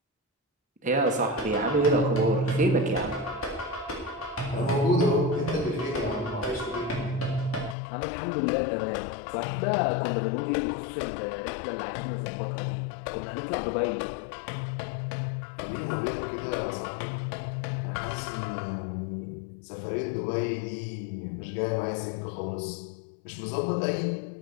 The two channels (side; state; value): right; drops out; at 7.8 s